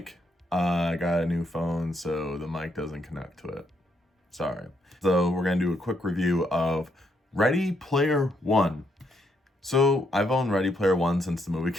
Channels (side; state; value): both; normal; correlation 0.75